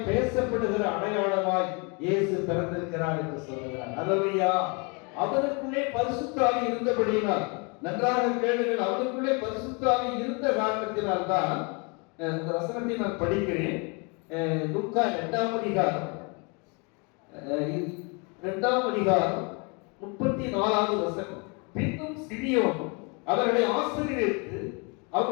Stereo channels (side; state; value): right; quieter; 32.0 dB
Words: பேசப்படுகிற அடையாளமாய் இயேசு பிறந்திருக்கிறார் என்று சொல்லுகிறார். அல்லேலூயா. அவருக்குள்ளே பரிசுத்த ஆவி இருந்தபடியினால், நன்றாக கேளுங்கள், அவருக்குள்ளே பரிசுத்த ஆவி இருந்த காரணத்தினால் தான் இந்த வசனத்தை நான் படிக்கிறேன். லூக்கா 2ஆம் அதிகாரம் 34வது வசனம். பின்னும் சிமியோன் அவர்களை ஆசீர்வதித்து